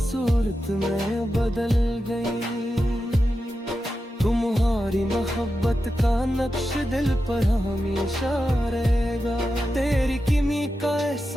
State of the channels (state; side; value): normal; both; correlation 0.90